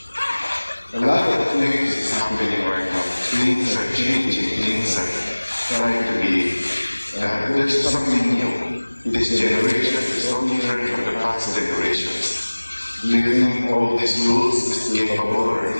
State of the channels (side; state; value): both; inverted; correlation -1.00